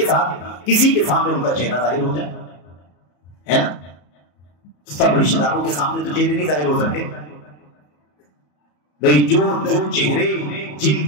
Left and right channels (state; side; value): late; right; 34 ms